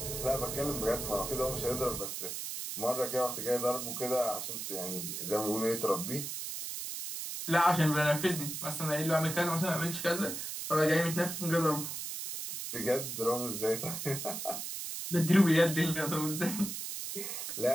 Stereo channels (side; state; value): right; noise; hiss, 5 dB below the sound